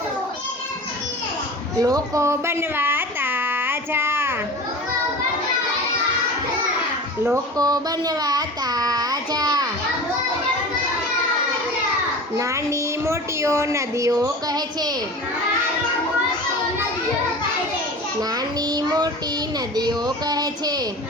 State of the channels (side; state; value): both; normal; correlation 0.35